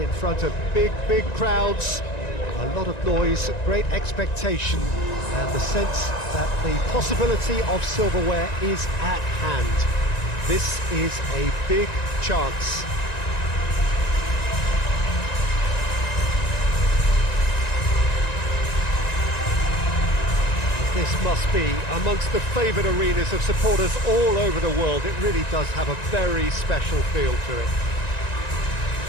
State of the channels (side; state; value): right; late; 1.9 ms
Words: in front of big crowds. A lot of noise, great expectation, and the sense that the possibility of silverware is at hand. This is a big chance. This must be amongst the favoured arenas of supporters all over the world. It really does have a very special feel to it.